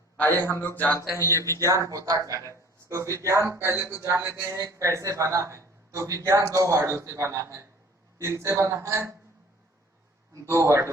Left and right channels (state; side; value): normal; both; correlation 0.50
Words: आइए हम लोग जानते हैं ये विज्ञान होता क्या है। तो विज्ञान पहले तो जान लेते हैं कैसे बना है। तो विज्ञान दो वर्डों से बना है। किनसे बना है? दो